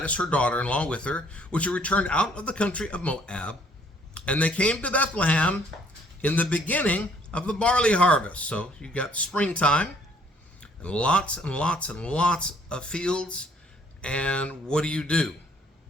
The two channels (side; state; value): both; normal; correlation 0.62